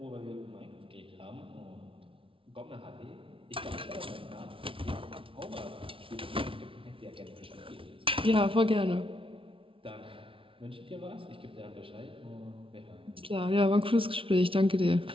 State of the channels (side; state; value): left; late; 0.25 ms